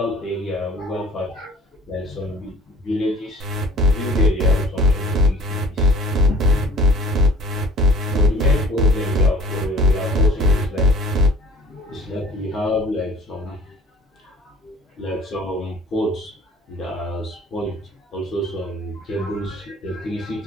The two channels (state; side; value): normal; both; correlation 0.50